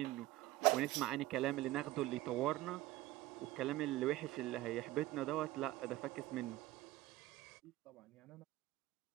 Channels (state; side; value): quieter; left; 16.8 dB